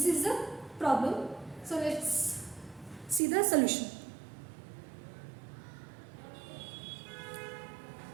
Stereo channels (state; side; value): drops out; left; at 3.2 s